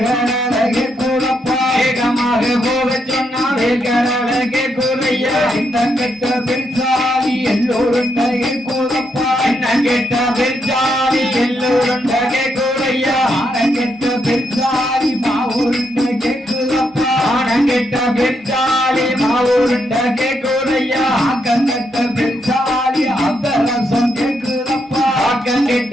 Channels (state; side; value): normal; both; correlation 0.79